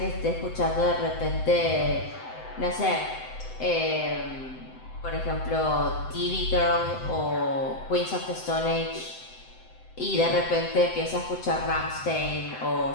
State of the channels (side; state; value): right; late; 7.8 ms